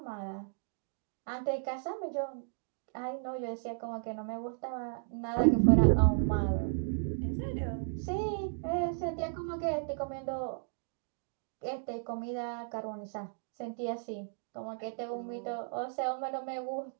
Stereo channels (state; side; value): silent; left; digital silence